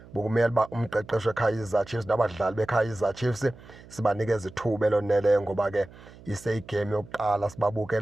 bokumele uba umqeqeshi weKaizer Chiefs nabadlali beKaizer Chiefs sibanikeza ithuba eloneleyo, ngoba ke iseyigame yokuqala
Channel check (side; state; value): right; noise; hum, 21 dB below the sound